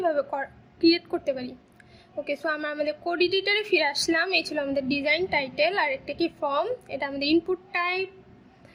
ক্রিয়েট করতে পারি। ওকে, সো আমরা আমাদের কোড এডিটরে ফিরে আসলাম। এই ছিল আমাদের ডিজাইন টাইটেল, আর একটা কি ফর্ম, এটা আমাদের ইনপুট টাইপ,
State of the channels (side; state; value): both; identical; correlation 1.00